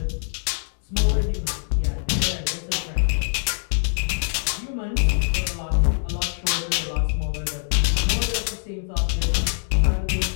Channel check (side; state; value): right; silent; 63 dB below the other